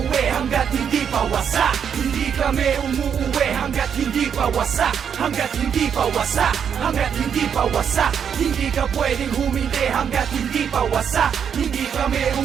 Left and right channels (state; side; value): quieter; left; 7.7 dB